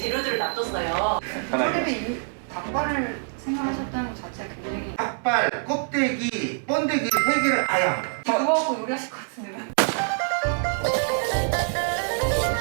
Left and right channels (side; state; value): left; silent; digital silence